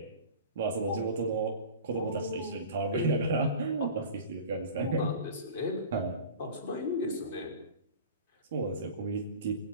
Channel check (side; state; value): both; inverted; correlation -0.38